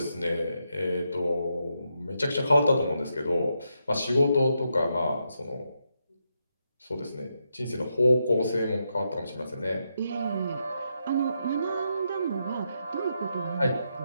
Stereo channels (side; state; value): both; inverted; correlation -0.83